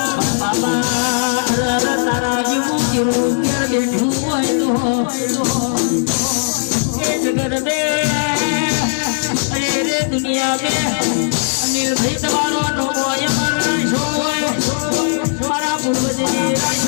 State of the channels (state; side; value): silent; right; digital silence